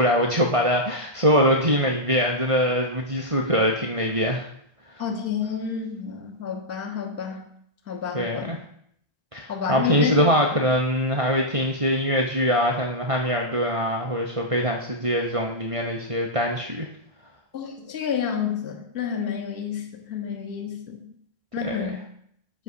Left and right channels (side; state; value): left; late; 1.5 ms